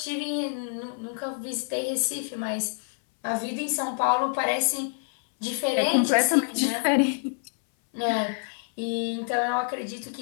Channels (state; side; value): silent; right; 60 dB below the other